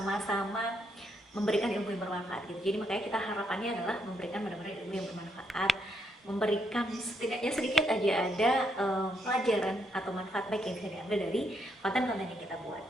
memberikan ilmu yang bermanfaat gitu. Jadi makanya kita harapannya adalah memberikan benar-benar ilmu yang bermanfaat, memberikan setidaknya sedikit aja ada pelajaran atau manfaat baik yang bisa diambil dari konten-konten yang kita buat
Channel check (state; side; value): normal; both; correlation 0.77